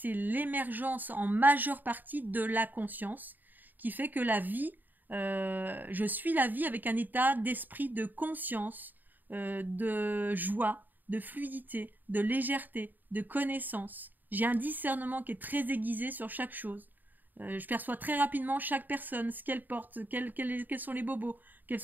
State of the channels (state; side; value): late; left; 0.088 ms